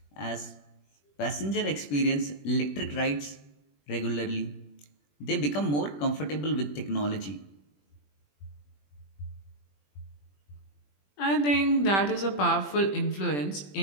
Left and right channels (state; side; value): late; right; 21 ms